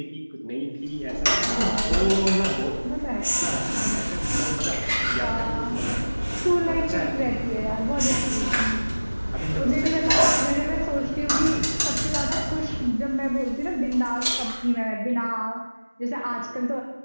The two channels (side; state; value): both; inverted; correlation -1.00